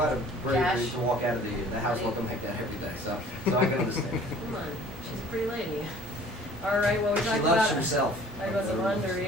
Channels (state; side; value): normal; both; correlation 0.50